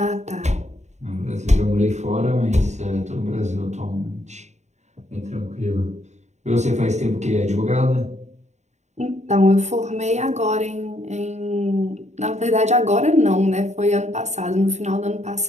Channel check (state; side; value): late; left; 0.33 ms